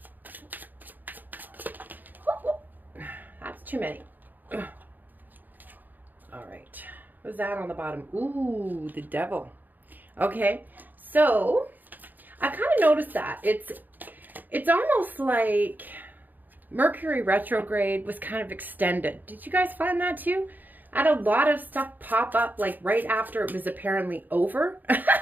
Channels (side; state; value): left; late; 0.086 ms